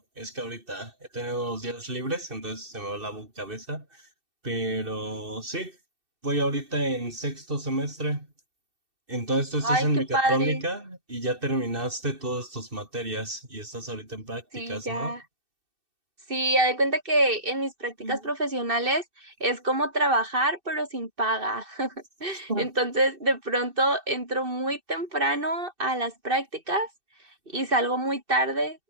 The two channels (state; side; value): late; left; 2.6 ms